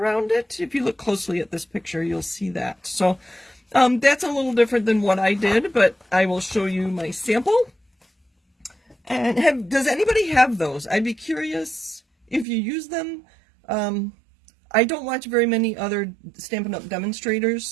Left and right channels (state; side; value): drops out; left; at 12.5 s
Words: it. If you look closely at this picture, you'll see that. So that's a little different than what I did, but I will show you my sample. And does anybody have those? I'd be curious if you use them. I don't watch very many other Stampin' Up!